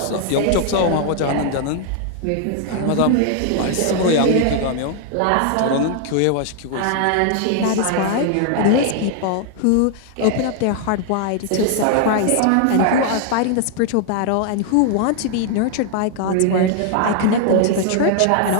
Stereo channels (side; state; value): both; different; correlation 0.00